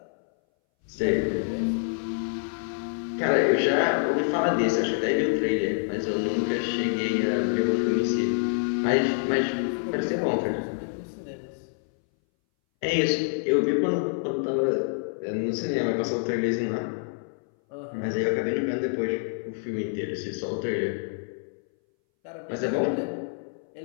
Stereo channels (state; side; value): silent; right; 60 dB below the other